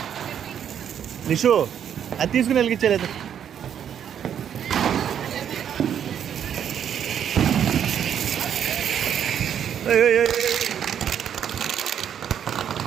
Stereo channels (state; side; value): quieter; left; 9.0 dB